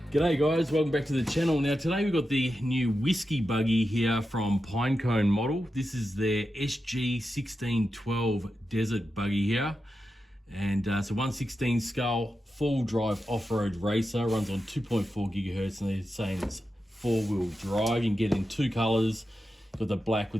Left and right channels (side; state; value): both; normal; correlation 0.90